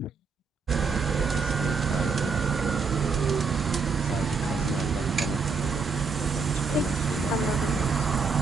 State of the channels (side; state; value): left; quieter; 4.8 dB